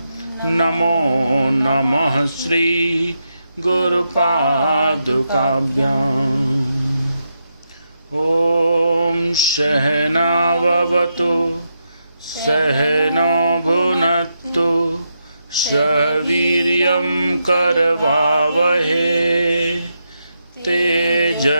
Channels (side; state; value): both; inverted; correlation -0.84